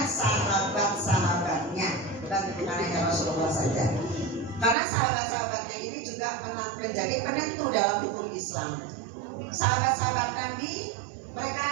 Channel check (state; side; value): drops out; left; at 4.8 s